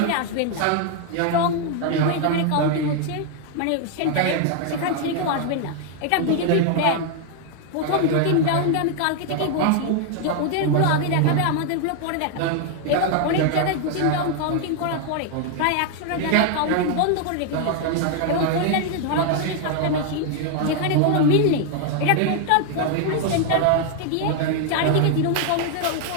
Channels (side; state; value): both; different; correlation 0.00